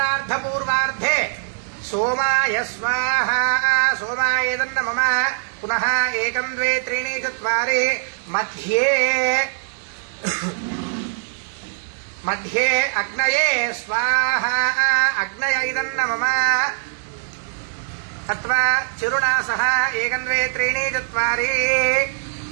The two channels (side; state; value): left; silent; digital silence